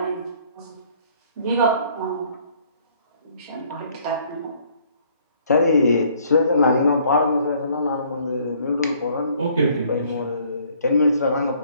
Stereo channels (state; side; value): inverted; both; correlation -0.61